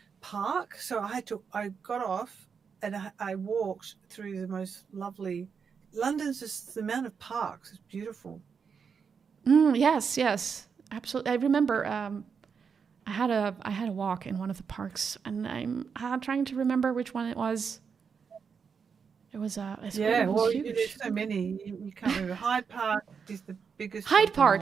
park. So I got off and I walked through the most lovely. London's just the amount of parks is beautiful. Yes, absolutely. I remember. I had a walk in one of the parks, and I'm trying to remember which one it was. It was Yeah, it was well, there's huge. so many. You can't remember. Hyde Park is the biggest Hyde of them Park,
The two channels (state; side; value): quieter; left; 6.2 dB